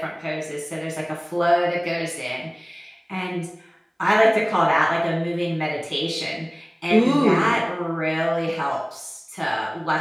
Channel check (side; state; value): both; identical; correlation 1.00